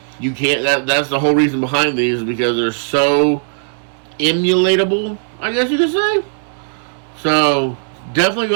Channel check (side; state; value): left; silent; 65 dB below the other